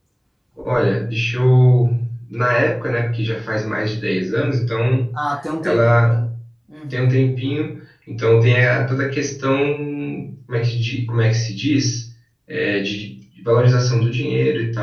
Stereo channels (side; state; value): both; identical; correlation 1.00